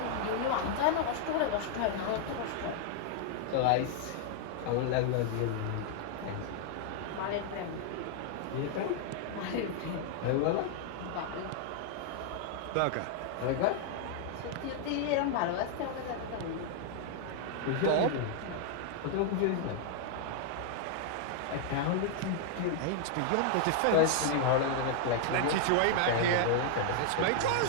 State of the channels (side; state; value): both; different; correlation 0.00